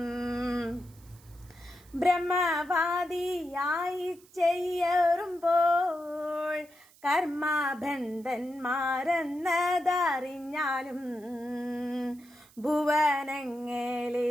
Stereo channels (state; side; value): noise; right; hiss, 27 dB below the sound